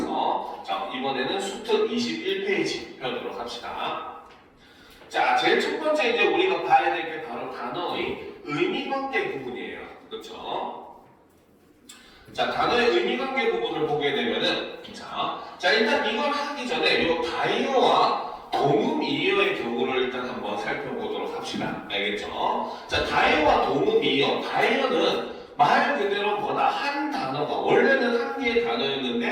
자, 이번에는 수특 21페이지 펴도록 합시다. 자, 제일 첫 번째 이제 우리가 봐야 될 게 바로 단어의 의미관계 부분이에요. 그렇죠? 자, 단어의 의미관계 부분을 보게 되면은 자, 일단 이걸 하기 전에 이 다이어와 동음이어의 경우를 일단 한번 살펴보도록 합시다. 알겠죠? 자, 다이어와 동음이어. 다이어는 말 그대로 뭐다? 한 단어가 원래는 한 개의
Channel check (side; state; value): both; identical; correlation 1.00